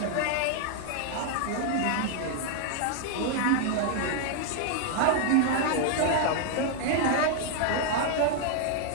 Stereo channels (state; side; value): different; both; correlation 0.00